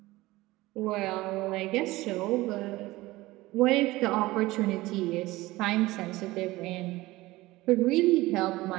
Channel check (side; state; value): left; quieter; 19.1 dB